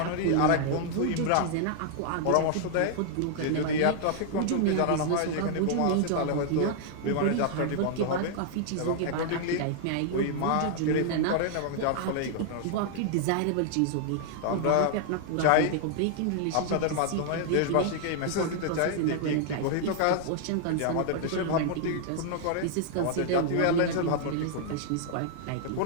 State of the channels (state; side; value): different; both; correlation 0.00